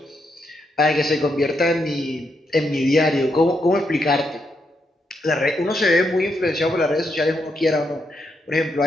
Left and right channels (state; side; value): normal; both; correlation 0.80